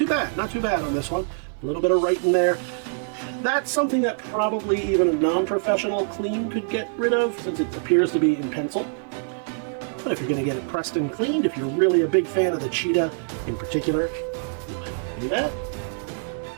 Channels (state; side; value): silent; left; digital silence